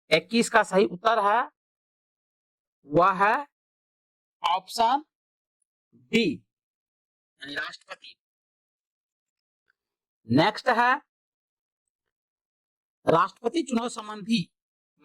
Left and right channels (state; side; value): identical; both; correlation 1.00